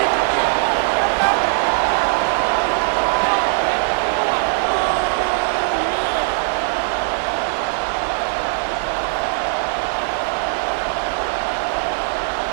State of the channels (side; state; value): left; silent; digital silence